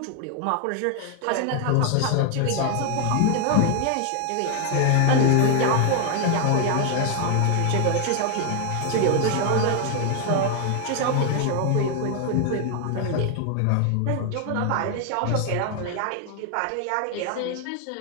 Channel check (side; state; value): both; different; correlation 0.00